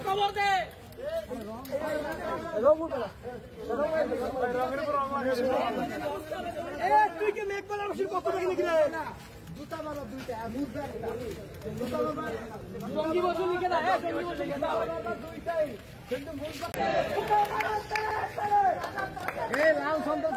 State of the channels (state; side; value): identical; both; correlation 1.00